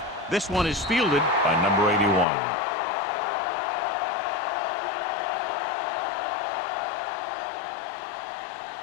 This one is fielded by number 81.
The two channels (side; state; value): right; drops out; at 2.2 s